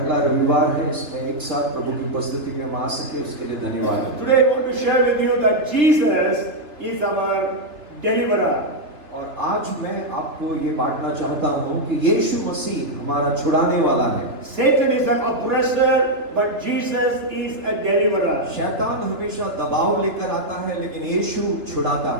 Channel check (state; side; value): late; left; 3.3 ms